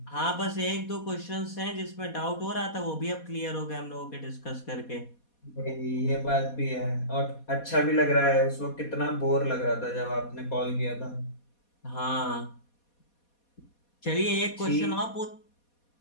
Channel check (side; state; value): right; late; 4.2 ms